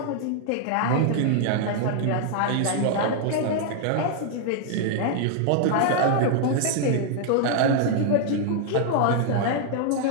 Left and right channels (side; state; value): both; different; correlation 0.00